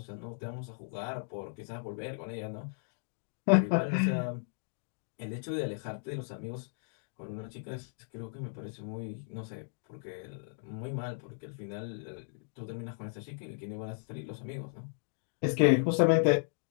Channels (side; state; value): right; silent; digital silence